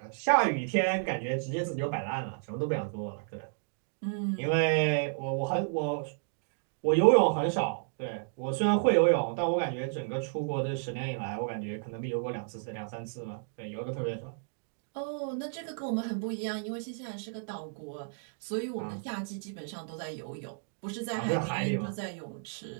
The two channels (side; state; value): left; silent; digital silence